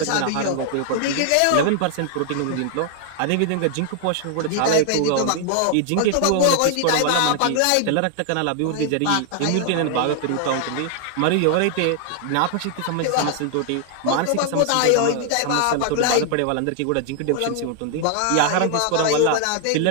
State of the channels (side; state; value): both; different; correlation 0.00